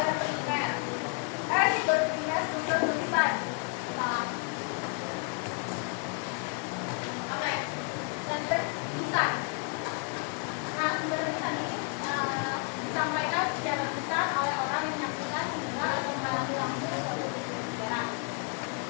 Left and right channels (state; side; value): quieter; right; 37.0 dB